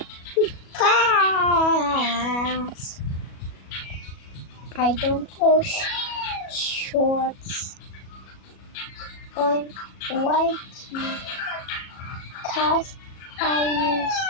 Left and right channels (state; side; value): late; right; 37 ms